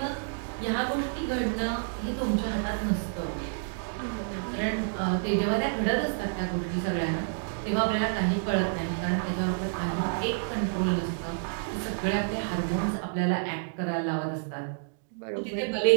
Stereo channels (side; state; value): left; silent; digital silence